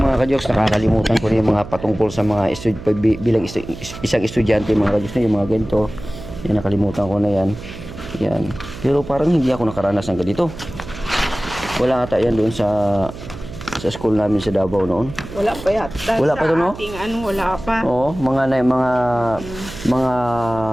mga ka-jokes, nakakalimutan ko na yung mga patungkol sa mga bilang isang estudyante mga ka-jokes na yung mga ganito. Yan, nakalimutan ko na yan. Yan. Pero parang hindi ako nakaranas ng ganito. Wala ata yan doon sa school namin sa Davao noon. Wala pa yata. Wala pa to, no? Ating wala pa. Oo, mga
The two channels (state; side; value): noise; right; hum, 13 dB below the sound